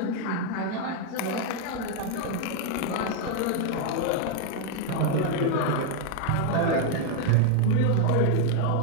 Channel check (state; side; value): different; both; correlation 0.00